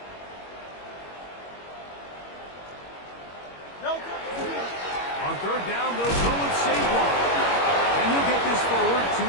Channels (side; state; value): right; late; 21 ms